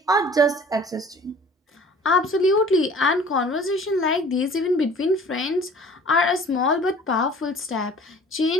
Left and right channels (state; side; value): normal; both; correlation 0.48